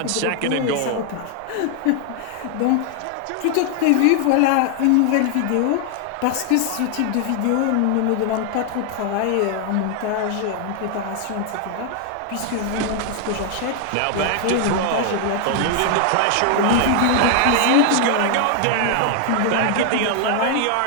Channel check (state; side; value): different; both; correlation 0.00